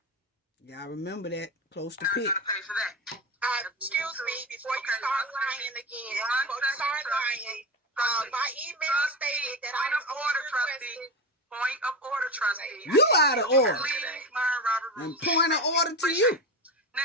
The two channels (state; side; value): normal; both; correlation 0.20